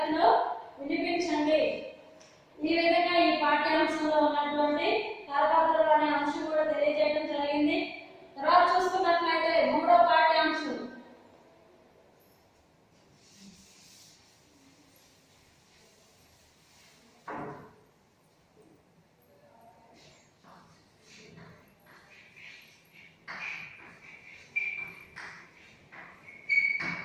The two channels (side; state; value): both; identical; correlation 1.00